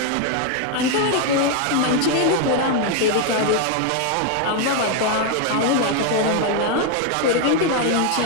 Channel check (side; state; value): both; different; correlation 0.01